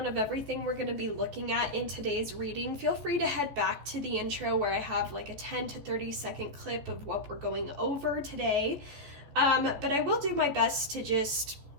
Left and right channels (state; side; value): late; left; 14 ms